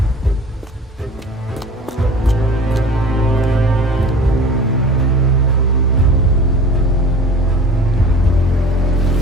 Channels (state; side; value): normal; both; correlation 0.41